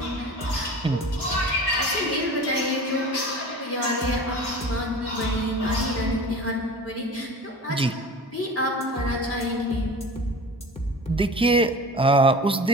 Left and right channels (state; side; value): normal; both; correlation 0.37